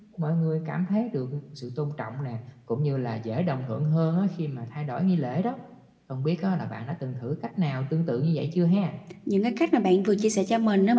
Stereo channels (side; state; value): both; identical; correlation 1.00